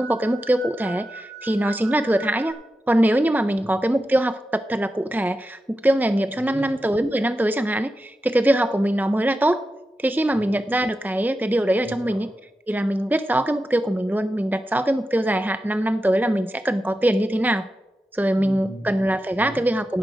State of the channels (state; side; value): normal; both; correlation 0.90